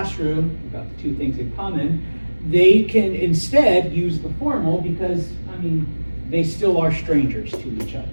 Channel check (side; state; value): both; inverted; correlation -1.00